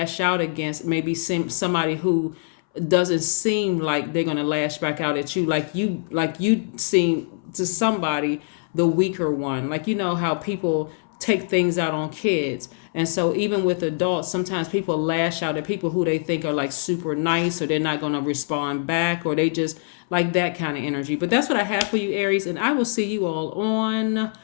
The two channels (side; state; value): right; silent; 63 dB below the other